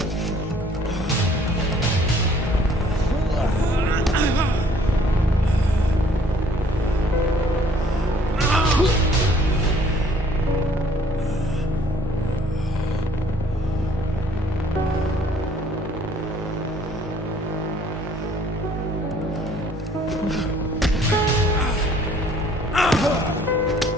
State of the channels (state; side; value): normal; both; correlation 0.59